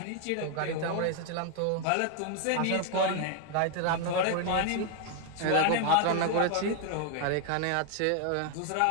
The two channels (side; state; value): both; different; correlation 0.00